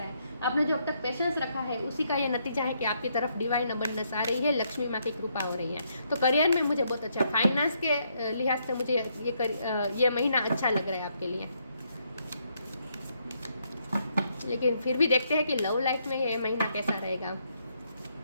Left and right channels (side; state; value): both; inverted; correlation -0.75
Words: है, आपने जो अब तक पेशेंस रखा है उसी का ये नतीजा है कि आपकी तरफ डिवाइन अबंडेंस आ रही है, लक्ष्मी माँ की कृपा हो रही है। तो करियर में मुझे बहुत अच्छा, फाइनेंस के लिहाज से मुझे ये महीना अच्छा लग रहा है आपके लिए। लेकिन फिर भी देखते हैं कि लव लाइफ में ये महीना कैसा रहेगा।